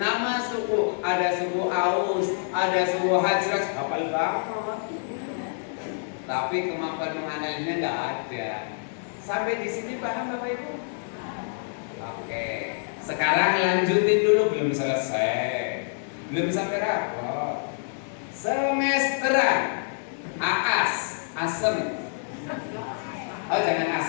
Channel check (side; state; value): right; silent; 59 dB below the other